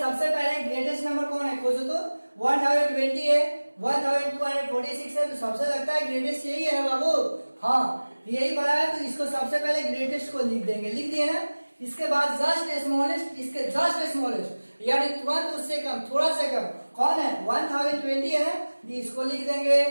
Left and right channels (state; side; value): inverted; both; correlation -1.00